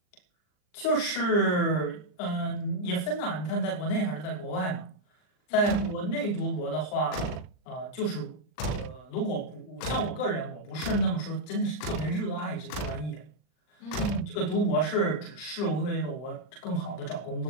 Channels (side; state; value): right; late; 39 ms